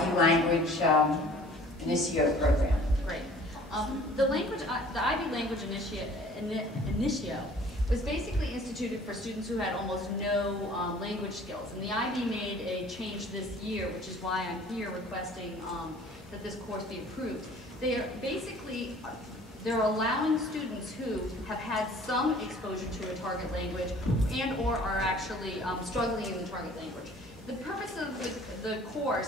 language Initio program. Great. The IB language Initio was basically instituted for students who had almost no language skills. And the IB made a change this year, which is why I'm here requesting that this course be approved. They're allowing students who have had some exposure to a target language and or are actually struggling in the target language. The purpose of the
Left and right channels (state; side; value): normal; both; correlation 0.51